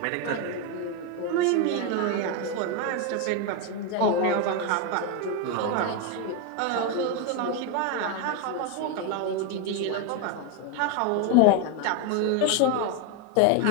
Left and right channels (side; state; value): both; different; correlation 0.02